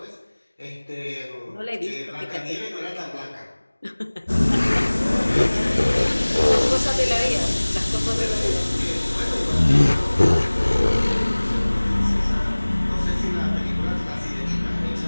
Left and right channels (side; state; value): both; inverted; correlation -1.00